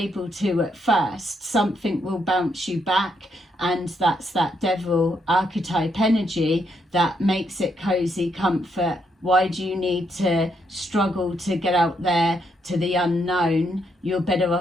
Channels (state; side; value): normal; both; correlation 0.76